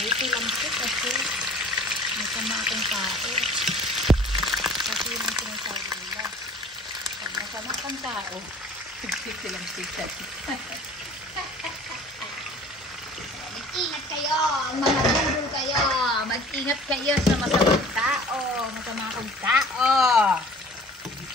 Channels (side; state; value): both; normal; correlation 0.47